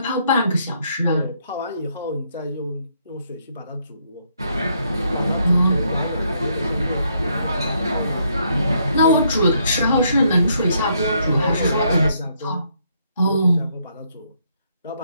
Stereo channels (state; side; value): inverted; both; correlation -0.72